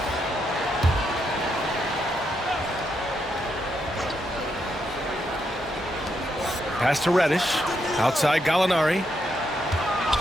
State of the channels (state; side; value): normal; both; correlation 0.80